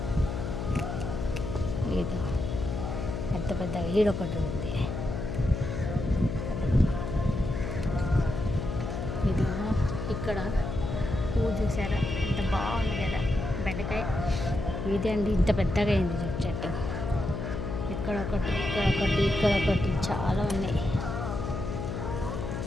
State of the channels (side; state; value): left; noise; hum, 4 dB below the sound